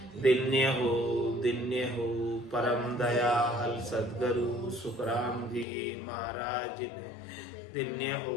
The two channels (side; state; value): right; drops out; at 5.7 s